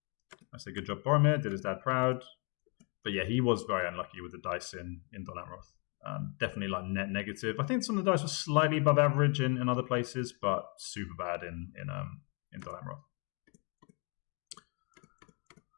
I say good job, Boromir. Did his dad proud. But yeah, he was very unlucky with the dice in Dol Amroth. Definitely like net negative. I think some of the dice were slightly above average in other places, but super bad in Dol Amroth.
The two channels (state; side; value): quieter; right; 35.2 dB